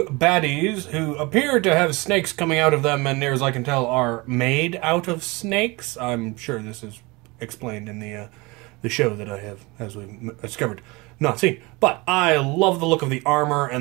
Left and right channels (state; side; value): quieter; left; 24.8 dB